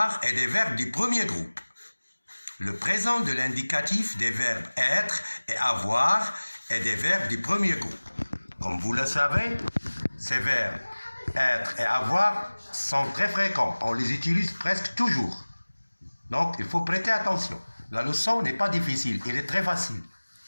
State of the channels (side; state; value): both; inverted; correlation -1.00